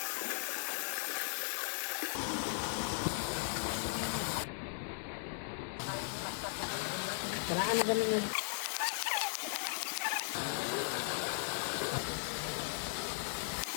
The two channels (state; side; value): silent; right; 53 dB below the other